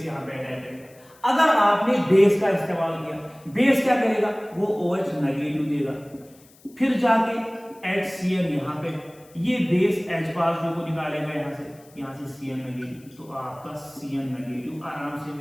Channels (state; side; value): noise; left; hiss, 27 dB below the sound